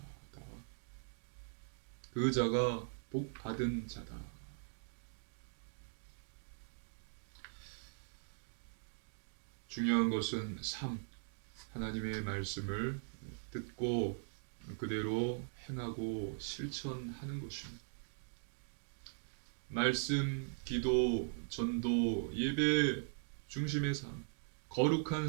그 자가 복 받은 자다. 중요한 것은 삶, 하나님의 말씀을 듣고 그대로 행하고 실천하는 것입니다. 말씀, 기도, 전도, 예배 중심의 삶, 거룩한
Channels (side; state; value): left; silent; digital silence